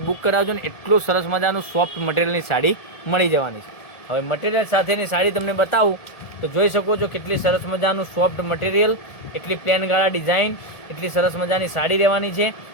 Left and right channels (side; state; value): right; late; 1.7 ms